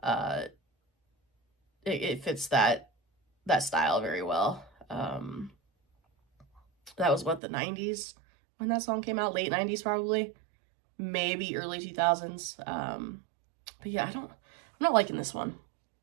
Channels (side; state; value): left; drops out; at 7.4 s